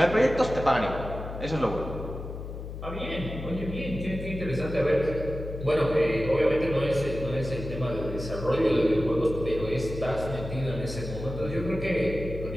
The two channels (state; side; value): noise; left; hum, 9 dB below the sound